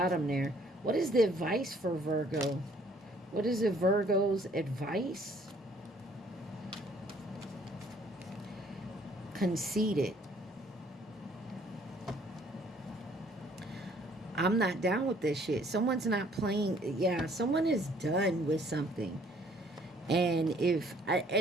there. What is the advice for Virgo? What is a Virgo's advice? Conceited. I'm not down with this shit. Someone's not playing. Yeah, someone is done with something. And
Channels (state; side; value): normal; both; correlation 0.60